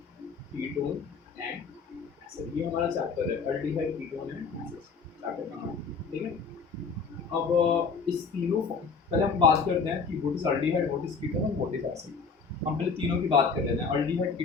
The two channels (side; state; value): right; quieter; 5.1 dB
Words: कीटोन एंड एसिड। ये हमारा चैप्टर है aldehyde ketone and acid, chapter का नाम, ठीक है। अब इस तीनों पहले हम बात करते हैं कि what is aldehyde, what is ketone और व्हाट इज एसिड। हम पहले तीनों की बात कर लेते हैं, अल्डिहाइड